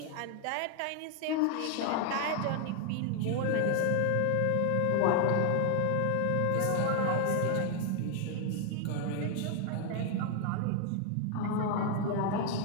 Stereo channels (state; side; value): different; both; correlation 0.00